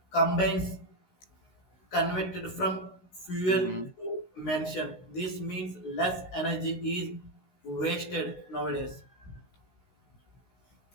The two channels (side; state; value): right; late; 16 ms